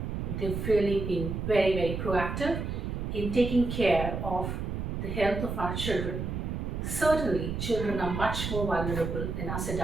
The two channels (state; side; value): noise; right; rumble, 3 dB below the sound